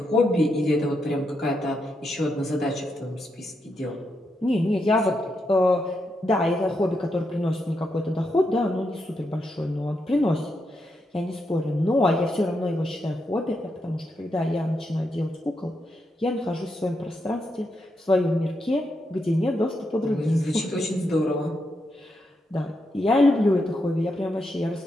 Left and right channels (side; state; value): both; normal; correlation 0.83